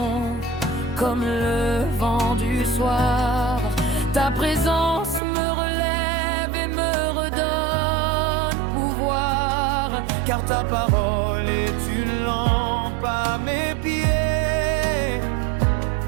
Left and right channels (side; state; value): left; drops out; at 5.2 s